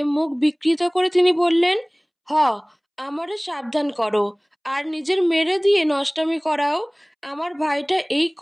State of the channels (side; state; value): both; identical; correlation 1.00